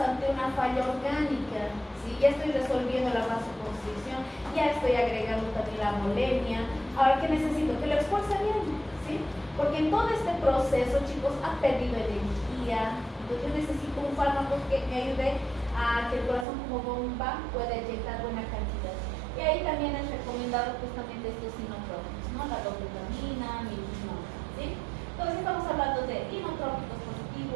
una falla orgánica, ¿sí? Ya estoy resolviendo la vasoconstricción, ya estoy agregando también la molemia. Ahora, ¿qué necesito? Que lo expulse bien, ¿sí? Porque en todo este proceso, chicos, ha perdido energía. Entonces yo necesito un fármaco que me ayude a que el corazón como bomba pueda inyectar buena cantidad. Y ahí también es recomendado justamente estos inotrópicos, ¿no? La dopamina, milginona, ¿sí? Entonces estamos hablando de inotrópicos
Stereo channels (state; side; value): drops out; left; at 16.4 s